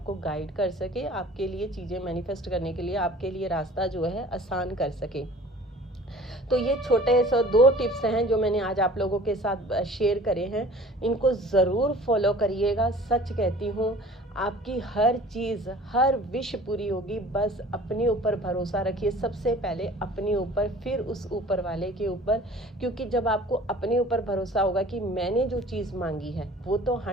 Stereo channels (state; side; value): normal; both; correlation 0.46